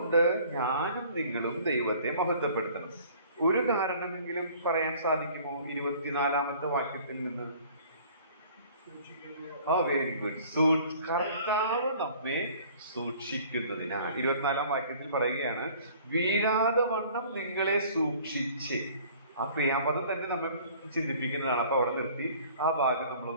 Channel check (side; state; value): both; inverted; correlation -0.52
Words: ഞാനും നിങ്ങളും ദൈവത്തെ മഹത്വപ്പെടുത്തണം? ഒരു കാരണമെങ്കിലും പറയാൻ സാധിക്കുമോ 24-ാമത്തെ വാക്യത്തിൽ നിന്ന്? Very good. കർത്താവ് നമ്മെ സൂക്ഷിക്കുന്നതിനാൽ 24-ാം വാക്യത്തിൽ പറയുകയാണ്, വീഴാതെ വണ്ണം നിങ്ങളെ സൂക്ഷിച്ച്. ആ ക്രിയാപദം തന്നെ നമ്മൾ ചിന്തിപ്പിക്കുന്നതാണ്. അപ്പൊ അവിടെ നിർത്തി ആ ഭാഗം